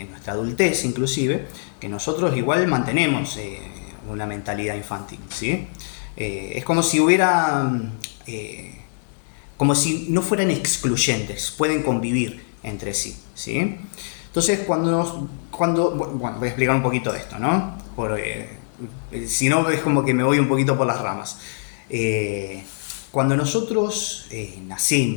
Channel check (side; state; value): right; silent; 63 dB below the other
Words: nuestra adultez inclusive, que nosotros igual mantenemos una mentalidad infantil, ¿sí? Es como si como si no fueran excluyentes, pueden convivir entre sí, ¿sí? Entonces, bueno, voy a explicar un poquito de esto, ¿no? Si no, es como que me voy un poquito por las ramas. Cuando nosotros